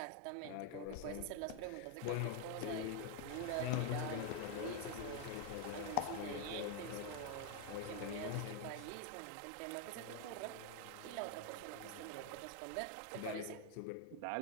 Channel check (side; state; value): both; different; correlation 0.01